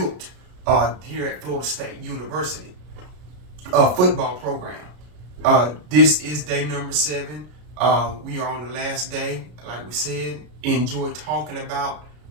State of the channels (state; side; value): late; left; 33 ms